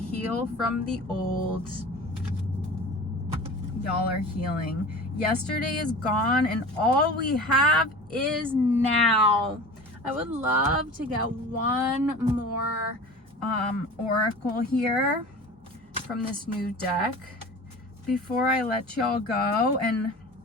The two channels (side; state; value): both; normal; correlation 0.37